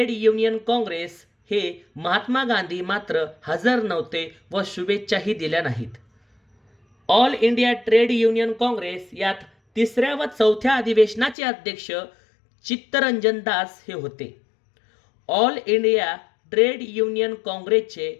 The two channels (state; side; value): drops out; right; at 11.4 s